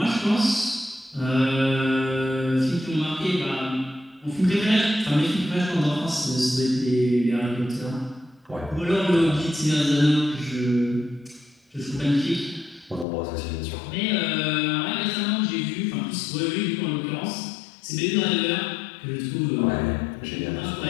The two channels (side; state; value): right; drops out; at 13.1 s